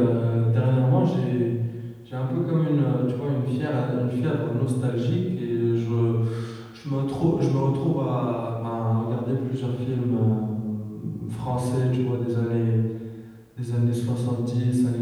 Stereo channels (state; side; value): identical; both; correlation 1.00